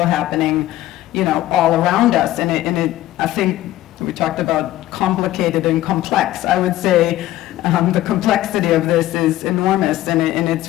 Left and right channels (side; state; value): right; quieter; 14.9 dB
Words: happening, you know, all around us. And I think we talked about complicated and complex. I would say the complexity of this is enormous, and it's